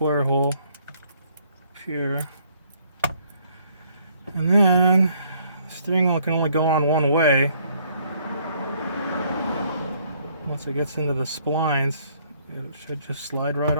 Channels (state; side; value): inverted; both; correlation -0.65